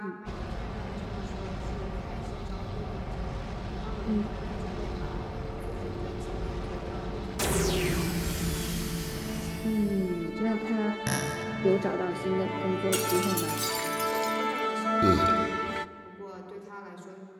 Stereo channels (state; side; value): identical; both; correlation 1.00